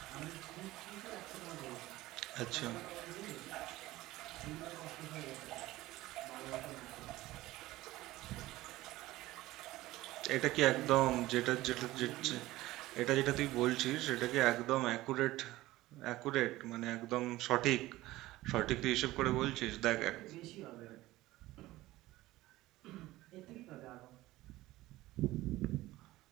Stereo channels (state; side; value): quieter; left; 17.4 dB